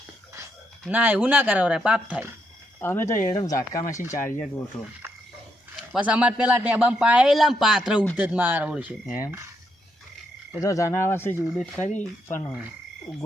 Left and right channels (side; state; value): both; normal; correlation 0.78